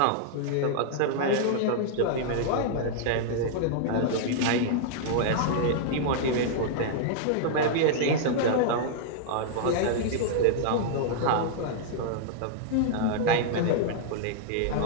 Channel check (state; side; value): different; both; correlation -0.01